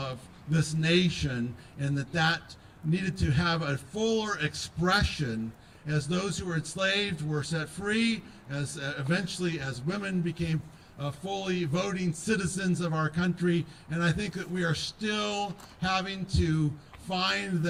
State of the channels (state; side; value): identical; both; correlation 1.00